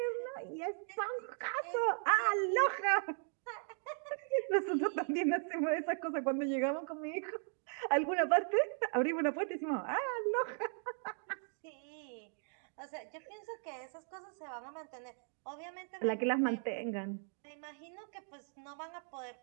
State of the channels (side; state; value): left; silent; 53 dB below the other